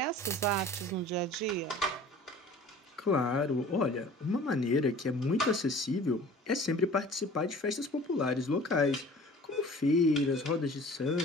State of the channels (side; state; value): both; normal; correlation 0.45